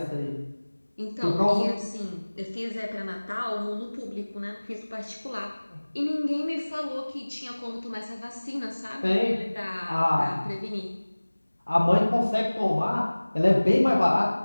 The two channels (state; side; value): inverted; both; correlation -1.00